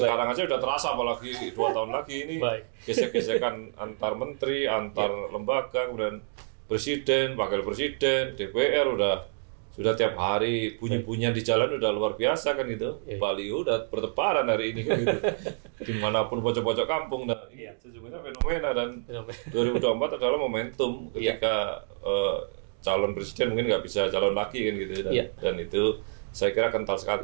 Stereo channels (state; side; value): silent; left; digital silence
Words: aja udah terasa, apalagi 2 tahun lagi ini gesek-gesekan antar menteri, antar lembaga, kemudian presiden, wakil presiden, DPR sudah tiap hari bunyi-bunyian di jalan udah luar biasa kan gitu. Baliho udah bertebaran hari ini kan gitu. Dimanapun pojok-pojok kampung. Nah ini sesungguhnya fenomena, dan 2024 adalah momentum ketika calon presiden mungkin nggak bisa calon lagi kan gitu. Dan itu saya kira kental